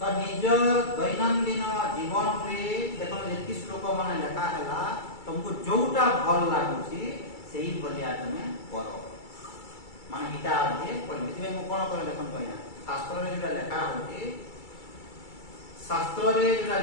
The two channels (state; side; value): late; right; 2.3 ms